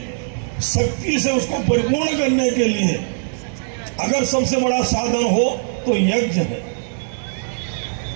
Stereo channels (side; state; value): left; silent; digital silence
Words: शक्ति से उसको परिपूर्ण करने के लिए अगर सबसे बड़ा साधन हो तो यज्ञ है।